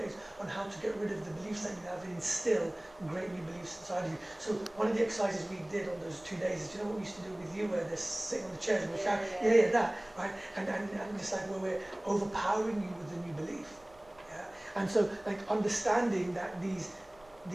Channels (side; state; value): right; noise; rumble, 27 dB below the sound